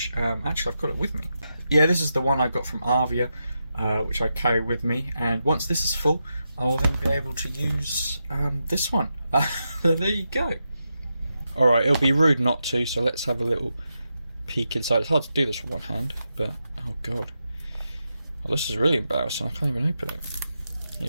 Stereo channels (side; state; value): both; inverted; correlation -0.87